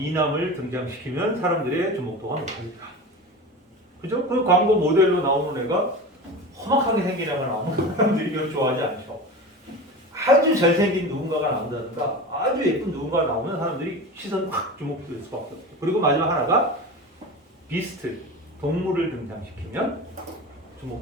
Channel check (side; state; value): both; normal; correlation 0.30